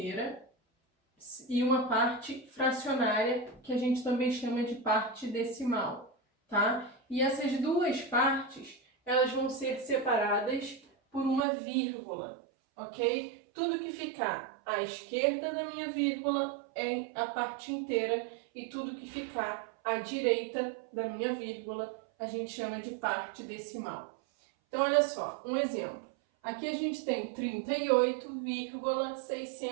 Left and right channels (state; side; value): drops out; left; at 11.4 s